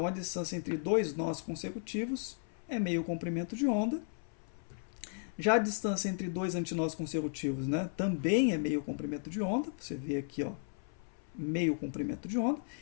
a distância entre dois nós consecutivos é meio comprimento de onda. Já a distância entre dois antinós consecutivos, né, também é meio comprimento de onda. Você vê aqui, ó, meio comprimento de onda.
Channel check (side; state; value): right; silent; 55 dB below the other